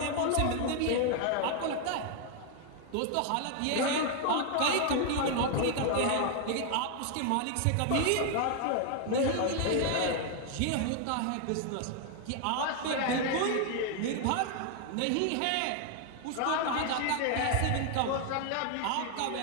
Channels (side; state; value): both; different; correlation 0.00